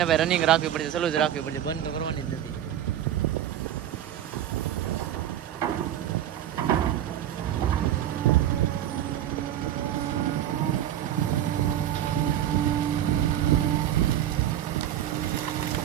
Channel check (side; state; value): left; quieter; 11.3 dB